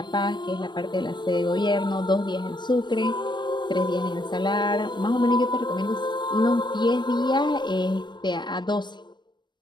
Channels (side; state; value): right; late; 0.22 ms